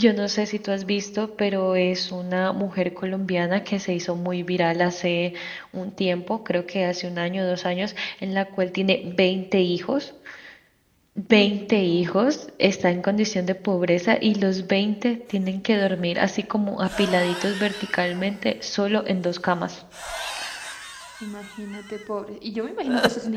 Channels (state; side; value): identical; both; correlation 1.00